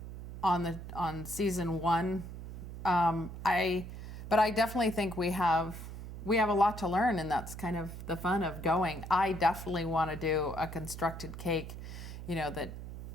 on season 1. But I definitely think we have a lot to learn, and that's kind of the fun of going. I definitely want to do a constructed cake,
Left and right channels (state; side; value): noise; right; hum, 10 dB below the sound